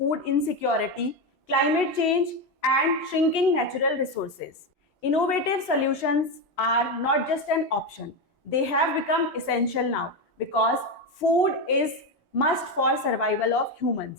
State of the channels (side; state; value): both; normal; correlation 0.12